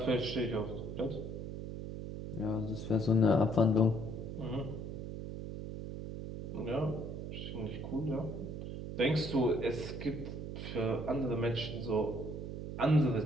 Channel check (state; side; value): noise; right; hum, 6 dB below the sound